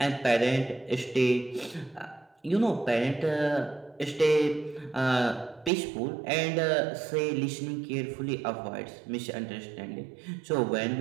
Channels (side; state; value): left; drops out; at 5.7 s